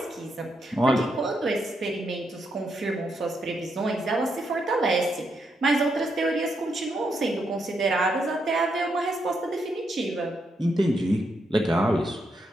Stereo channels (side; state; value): both; normal; correlation 0.80